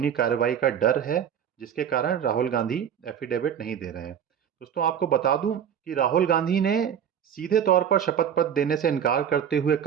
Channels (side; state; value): left; quieter; 8.6 dB